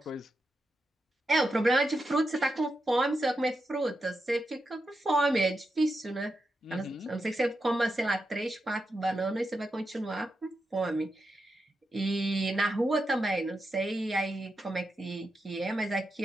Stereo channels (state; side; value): normal; both; correlation 0.87